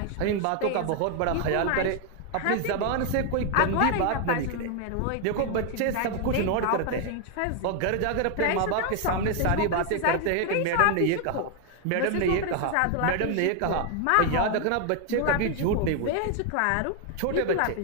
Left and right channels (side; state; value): both; different; correlation 0.00